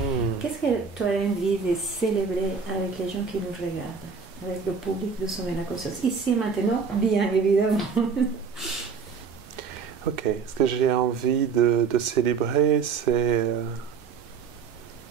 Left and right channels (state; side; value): quieter; left; 5.7 dB